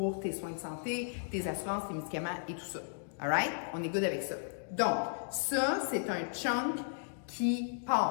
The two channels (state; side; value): silent; right; digital silence